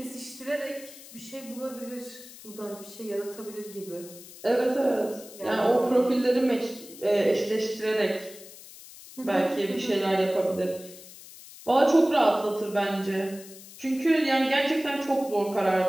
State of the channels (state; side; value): noise; left; hiss, 17 dB below the sound